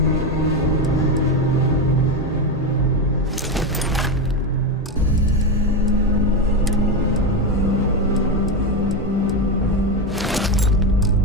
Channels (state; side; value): normal; both; correlation 0.13